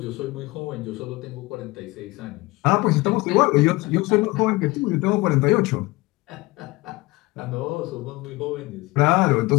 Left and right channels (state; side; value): quieter; right; 21.9 dB